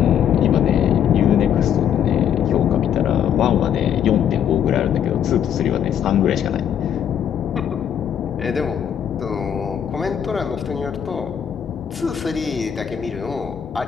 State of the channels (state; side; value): quieter; right; 9.0 dB